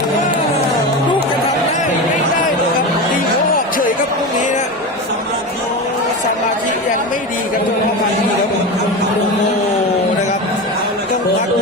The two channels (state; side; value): normal; both; correlation 0.23